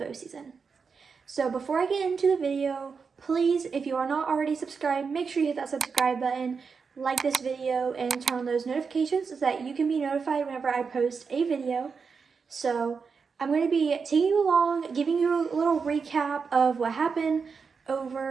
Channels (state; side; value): quieter; left; 5.4 dB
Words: season. So before I get into the video, please, if you are not already subscribed, make sure you hit that subscribe button, like this video, and turn on those notifications so that you can be notified whenever I post a video. So I'm going to be taking you along, giving you a little recap of what happened